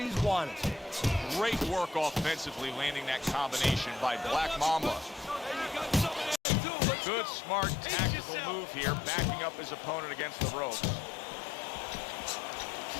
wanted. Great work offensively, landing that combination by Black Mamba. Good, smart, tactical move here, backing up his opponent against the ropes.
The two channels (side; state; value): right; drops out; at 6.4 s